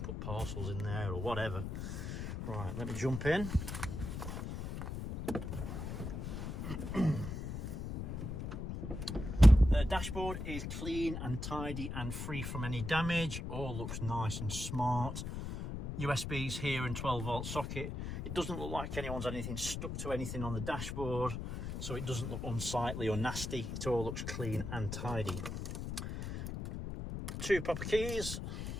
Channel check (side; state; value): left; noise; rumble, 5 dB below the sound